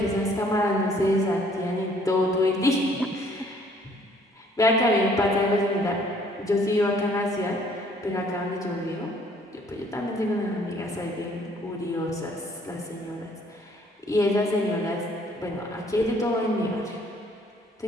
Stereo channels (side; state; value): both; normal; correlation 0.60